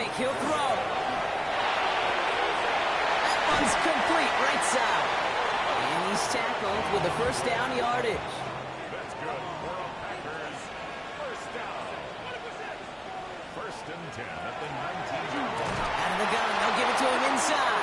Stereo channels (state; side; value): identical; both; correlation 1.00